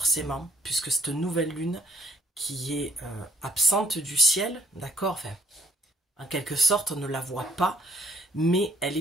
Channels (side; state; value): both; normal; correlation 0.63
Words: puisque cette nouvelle lune qui est absente du ciel, d'accord, enfin, en quelque sorte on ne la voit pas, mais elle